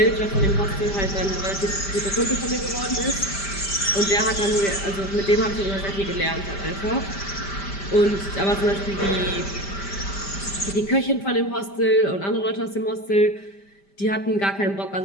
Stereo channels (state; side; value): late; right; 5.1 ms